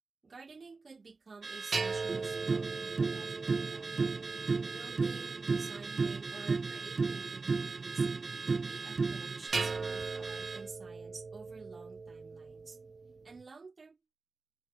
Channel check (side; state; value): left; quieter; 4.0 dB